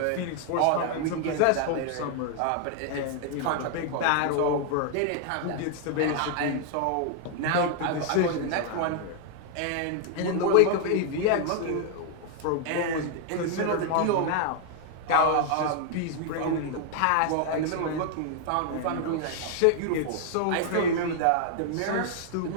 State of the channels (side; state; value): both; different; correlation 0.00